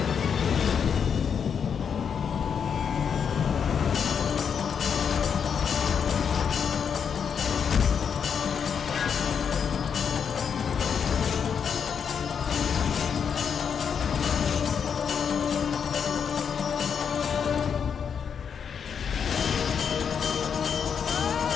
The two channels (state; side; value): quieter; right; 7.1 dB